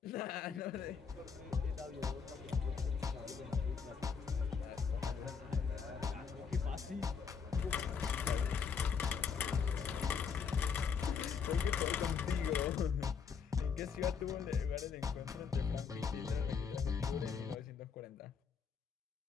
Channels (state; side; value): quieter; right; 6.2 dB